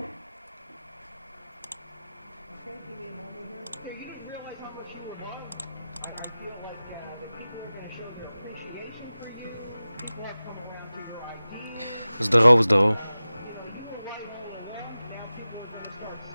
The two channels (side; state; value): both; inverted; correlation -0.96